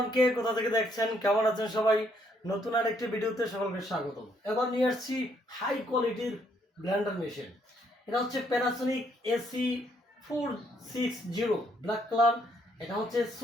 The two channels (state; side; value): normal; both; correlation 0.70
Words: কে কোথা থেকে দেখছেন, কেমন আছেন সবাই? নতুন আরেকটি ভিডিওতে সকলকে স্বাগতম। এবার নিয়ে আসছি হাই কোয়ালিটির ব্লেন্ডার মেশিন। এটা হচ্ছে প্যানাসোনিক AC460 ব্ল্যাক কালার। এটা হচ্ছে